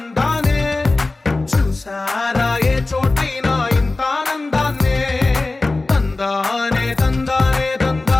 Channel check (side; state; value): right; quieter; 3.3 dB